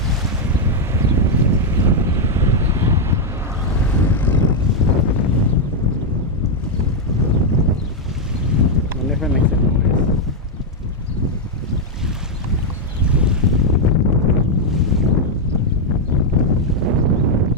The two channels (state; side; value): normal; both; correlation 0.01